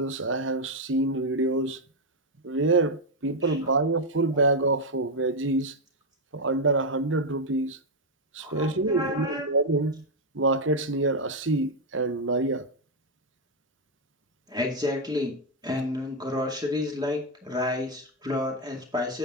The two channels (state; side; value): normal; both; correlation 0.02